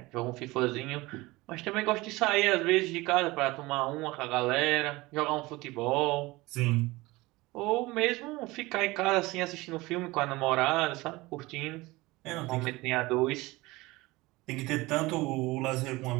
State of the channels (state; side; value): quieter; left; 21.2 dB